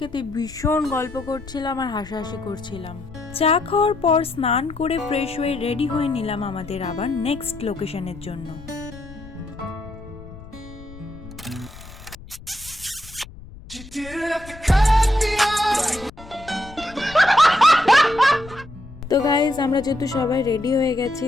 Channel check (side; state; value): left; noise; rumble, 17 dB below the sound